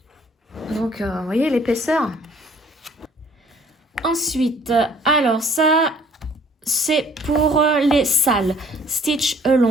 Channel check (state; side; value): normal; both; correlation 0.57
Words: Donc, vous voyez l'épaisseur. Ensuite, alors ça, c'est pour les salles. Stitch